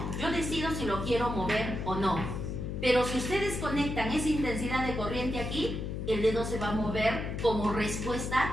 Yo decido si lo quiero mover o no. Pero si ustedes conectan esa intensidad de corriente aquí, el dedo se va a mover como respuesta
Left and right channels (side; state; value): left; noise; hum, 4 dB below the sound